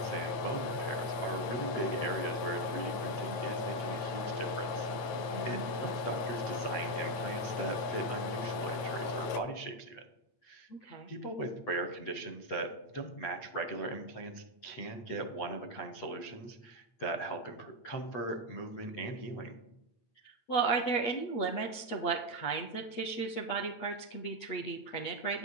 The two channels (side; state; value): right; late; 8.6 ms